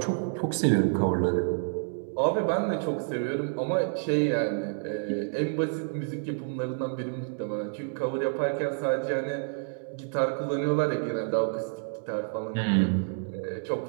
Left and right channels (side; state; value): left; silent; digital silence